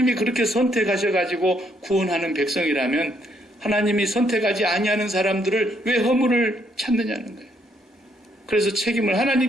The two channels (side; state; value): both; normal; correlation 0.72